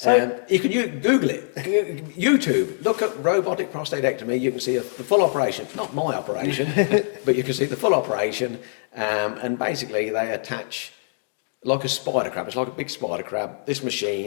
You can Google it. YouTube. Look at robotic prostatectomy. You can see the full operation. Not my operation, but you can see the full operation. And basically, they attach like a spider crab. It's like a big spider crab. This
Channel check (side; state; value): right; silent; digital silence